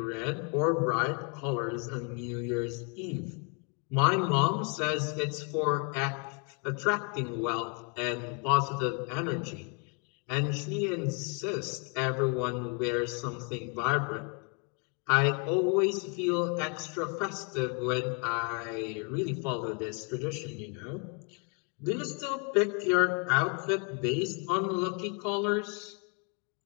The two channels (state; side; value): quieter; right; 36.5 dB